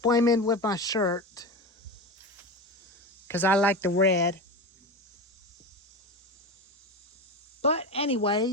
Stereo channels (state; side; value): normal; both; correlation 0.24